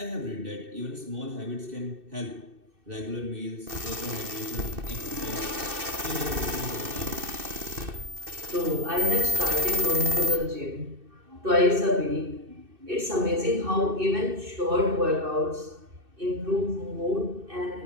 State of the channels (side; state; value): left; late; 2.6 ms